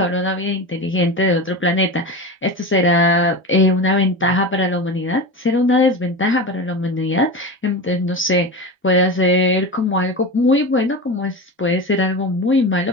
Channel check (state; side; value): normal; both; correlation 0.25